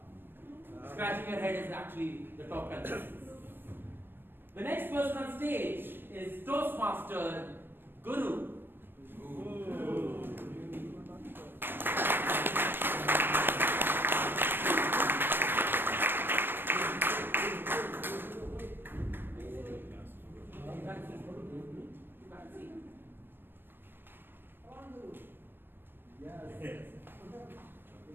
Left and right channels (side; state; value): left; late; 0.098 ms